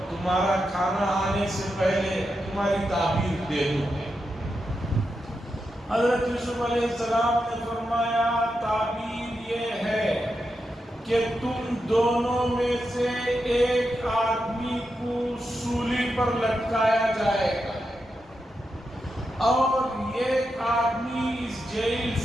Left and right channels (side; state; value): both; normal; correlation 0.87